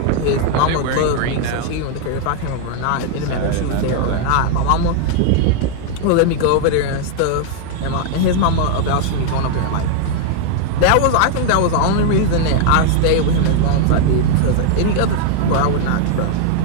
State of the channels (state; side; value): different; both; correlation 0.00